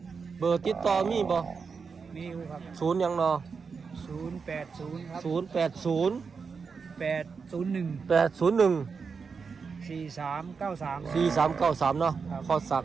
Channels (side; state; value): left; quieter; 5.4 dB